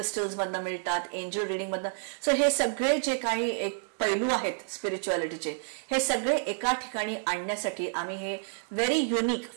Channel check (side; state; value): left; silent; digital silence